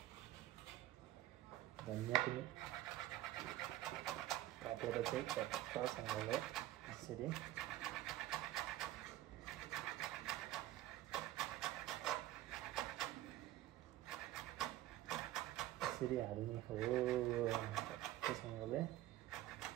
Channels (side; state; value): left; quieter; 14.9 dB